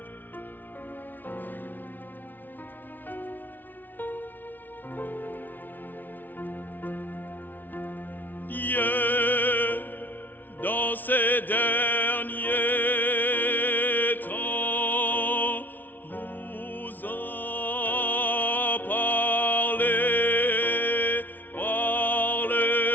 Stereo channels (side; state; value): right; late; 0.085 ms